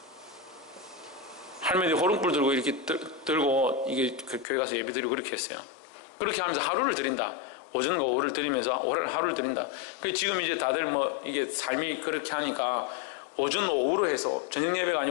할머니 호롱불 들고 이렇게 들고 이게 교회 가서 예배 드리고 그렇게 했어요. 그렇게 하면서 하루를 드린다. 오전과 오후를 드리면서 하루를 드린다. 그래서 지금 이제 다들 이게 삶이 그렇게 하니까 오전 오후로 해서 저녁 예배가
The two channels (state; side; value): drops out; right; at 4.5 s